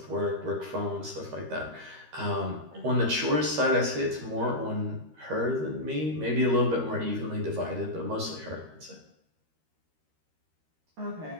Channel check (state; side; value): late; left; 13 ms